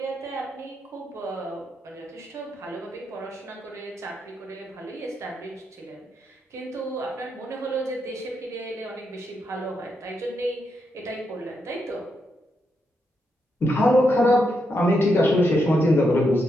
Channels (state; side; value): normal; both; correlation 0.82